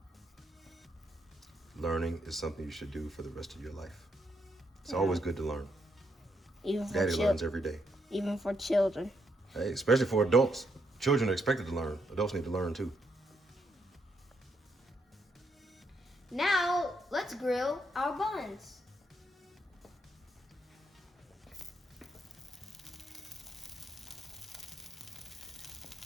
Learning is something you should do for the rest of your life. It's always good to learn. Even for Daddy learns every day. Even for children. Hey, especially for adults. Children are expected to learn. Adults need to learn too. Now, let's grill our buns.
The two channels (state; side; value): normal; both; correlation 0.77